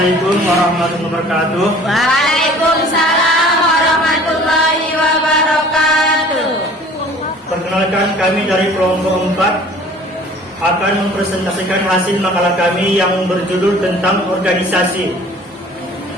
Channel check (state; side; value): normal; both; correlation 0.49